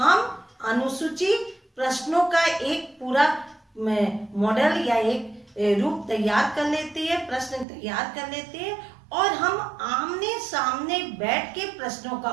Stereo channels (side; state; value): left; drops out; at 7.7 s